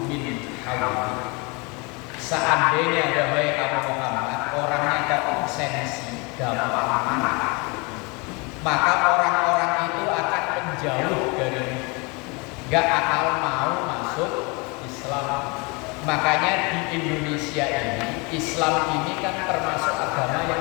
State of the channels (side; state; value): right; quieter; 29.2 dB